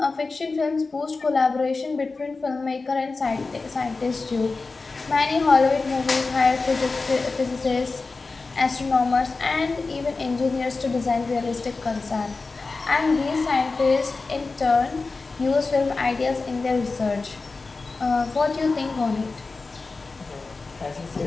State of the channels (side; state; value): right; quieter; 3.9 dB